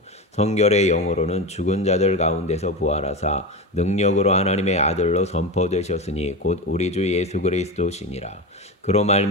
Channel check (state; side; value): normal; both; correlation 0.21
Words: 성결의 영으로는 죽은 자들 가운데서 부활하사 능력으로 하나님의 아들로 선포되셨으니 곧 우리 주 예수 그리스도시니라. 그로